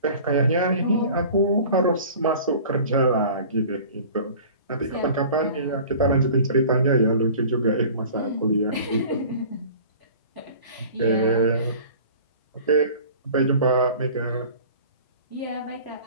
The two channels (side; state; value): both; inverted; correlation -0.43